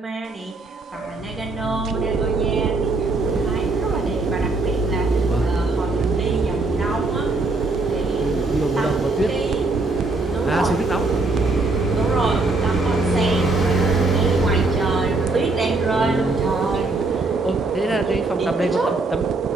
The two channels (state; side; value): quieter; left; 3.3 dB